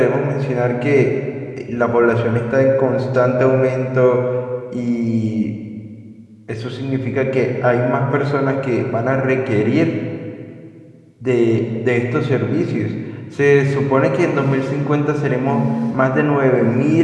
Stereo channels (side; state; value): both; identical; correlation 1.00